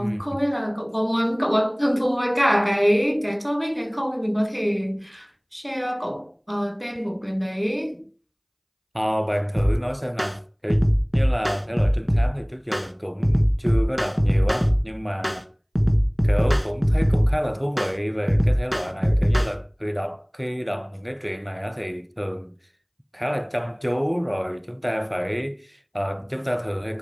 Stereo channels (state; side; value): identical; both; correlation 1.00